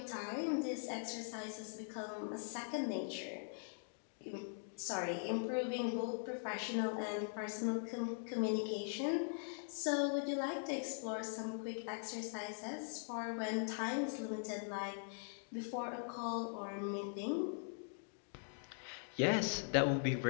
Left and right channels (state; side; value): silent; right; digital silence